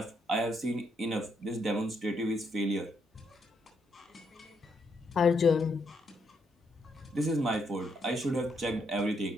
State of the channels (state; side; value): normal; both; correlation 0.76